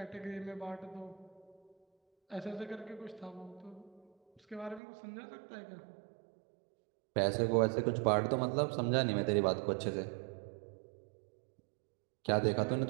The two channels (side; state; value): left; drops out; at 4.8 s